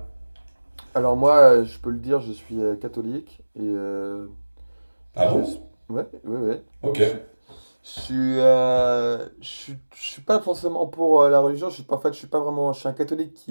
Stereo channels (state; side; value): inverted; both; correlation -1.00